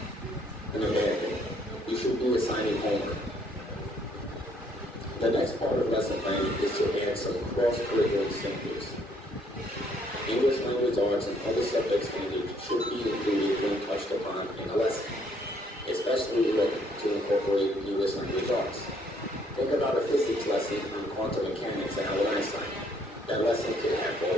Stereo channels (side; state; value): both; normal; correlation 0.66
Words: a bad thing. You should be assigning homework. The next part of lesson planning is to add some cross-curricular examples. English language arts and other subject standards should be included when touched upon in a lesson, especially when to incorporate English language arts. Think about a physics lesson on quantum mechanics and Albert Einstein. That lesson could have